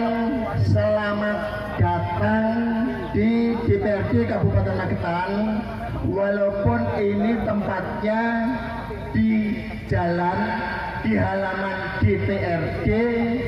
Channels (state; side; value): identical; both; correlation 1.00